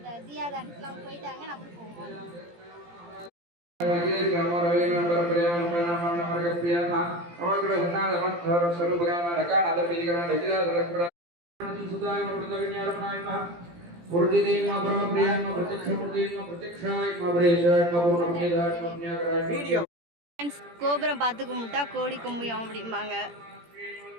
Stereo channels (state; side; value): late; left; 17 ms